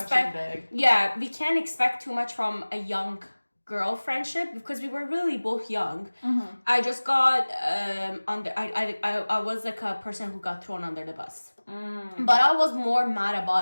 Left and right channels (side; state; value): both; inverted; correlation -1.00